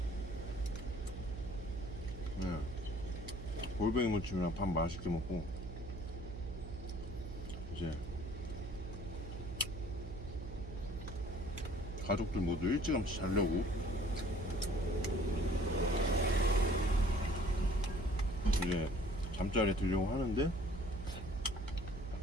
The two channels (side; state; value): right; noise; hum, 9 dB below the sound